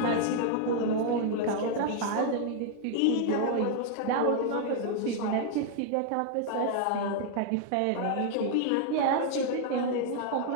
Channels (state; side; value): different; both; correlation 0.00